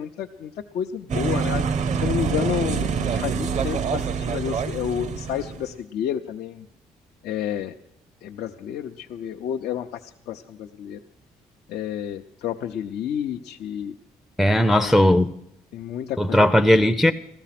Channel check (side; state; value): both; normal; correlation 0.75